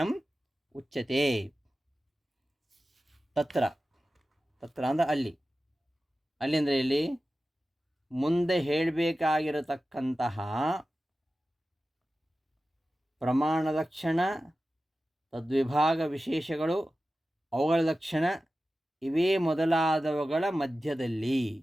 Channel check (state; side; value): normal; both; correlation 0.94